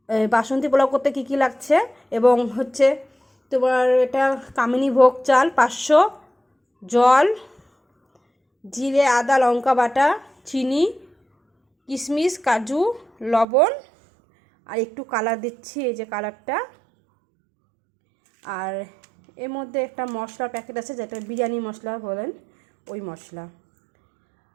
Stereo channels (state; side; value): drops out; left; at 13.5 s